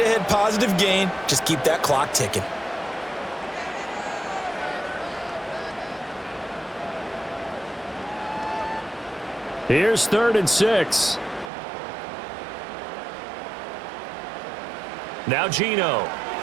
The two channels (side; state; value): left; drops out; at 11.5 s